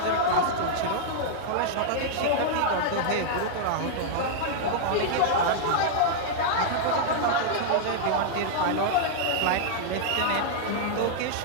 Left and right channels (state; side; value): different; both; correlation -0.01